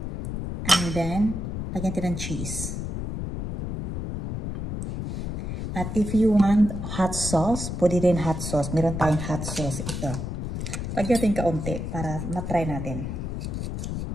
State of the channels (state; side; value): noise; left; rumble, 4 dB below the sound